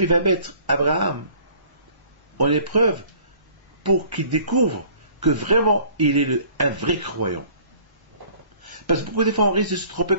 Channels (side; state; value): left; late; 1.1 ms